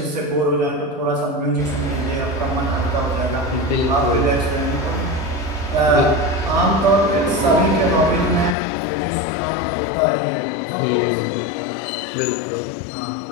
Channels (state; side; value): drops out; right; at 8.6 s